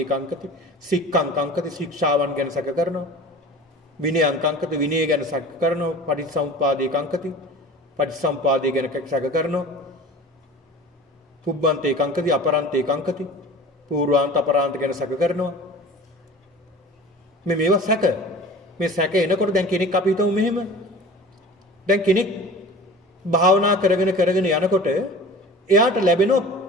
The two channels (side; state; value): both; normal; correlation 0.40